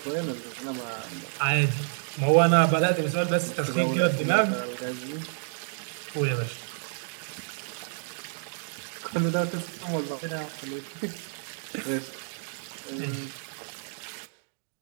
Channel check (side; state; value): left; silent; digital silence